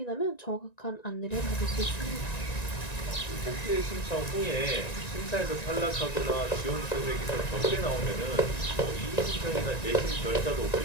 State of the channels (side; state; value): right; late; 1.9 ms